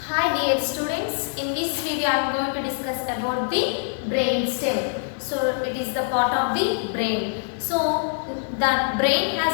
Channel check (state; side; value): silent; right; digital silence